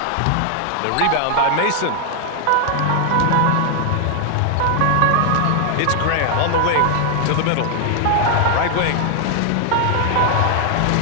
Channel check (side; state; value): both; different; correlation 0.00